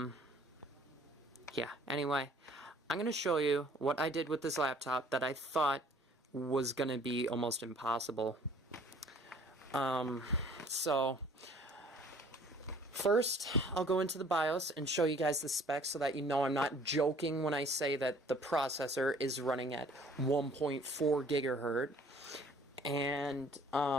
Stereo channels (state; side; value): normal; both; correlation 0.55